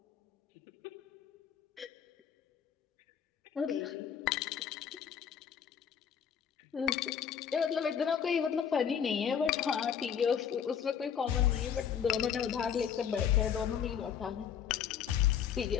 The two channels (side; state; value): right; quieter; 8.1 dB